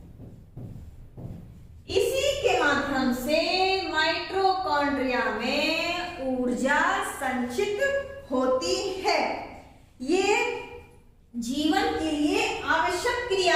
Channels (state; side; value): identical; both; correlation 1.00